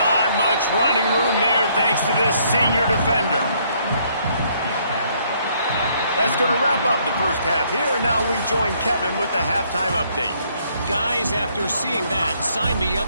much running room there thanks to this senior defender. That's going to wrap up the first half here, and now we join Kevin with the halftime update. Guys, after seeing that, sign me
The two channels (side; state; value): both; inverted; correlation -0.67